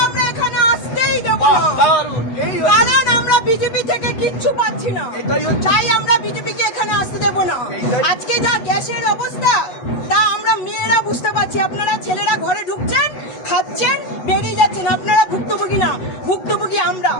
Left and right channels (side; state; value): right; late; 8.1 ms